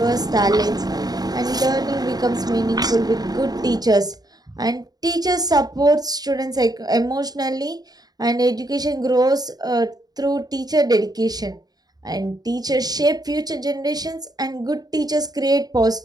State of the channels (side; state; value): left; late; 0.19 ms